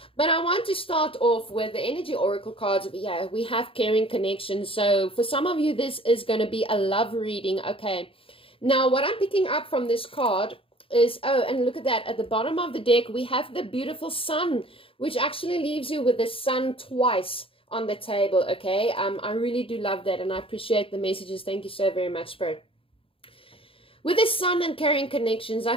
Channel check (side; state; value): right; late; 0.26 ms